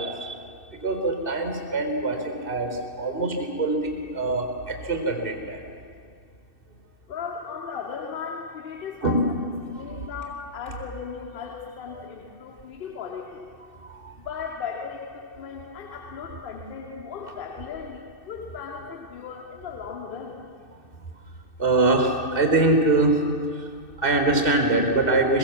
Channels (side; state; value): right; late; 2.6 ms